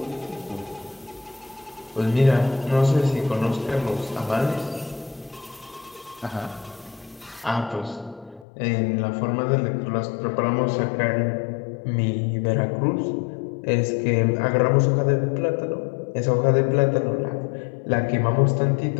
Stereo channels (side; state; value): right; drops out; at 8.5 s